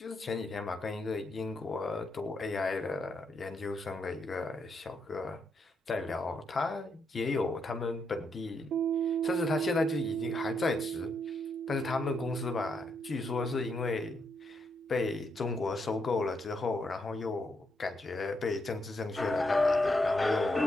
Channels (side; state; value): both; normal; correlation 0.79